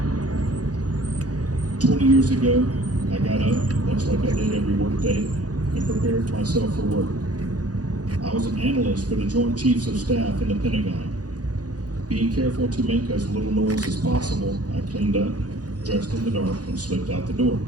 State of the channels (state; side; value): late; left; 0.68 ms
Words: 20 years ago, I got up, much like I did every workday, and prepared myself for work. I was an analyst for the Joint Chiefs of Staff in the Pentagon. Being careful to make as little noise as possible, I cleaned up, dressed in the dark, and slipped out the door.